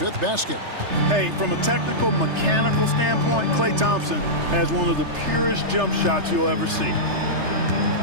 basket. Hey, from a technical, mechanical standpoint, Klay Thompson has one of the purest jump shots you'll ever see.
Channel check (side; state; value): left; late; 3.3 ms